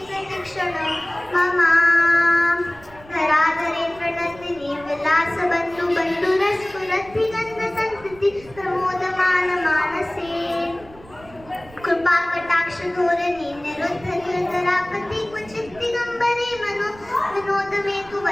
प्रतीक्षण ममा धराधरे प्रणतिनी विलास बंधु बंधु रसपुरति गंध संस्कृति प्रमोदमान मानसे कृपा कटाक्ष धोरणी निरुद्ध निरतरापति क्वचित दिगंबरे मनो विनोद में तु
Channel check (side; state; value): right; noise; rumble, 22 dB below the sound